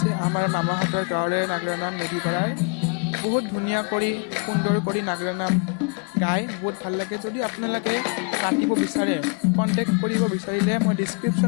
আমাৰ মামাহঁতৰ গাঁৱৰে নাগৰা নাম মেধিপাৰাৰ। বহুত ধুনীয়া কৰি সুন্দৰ কৰি নাগাৰা নাম গাই বহুত ভাল লাগে। যদি আপোনালোকে মাতিব বিচাৰে কণ্টেক্ট কৰিব বিচাৰিলে মই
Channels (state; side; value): quieter; right; 35.7 dB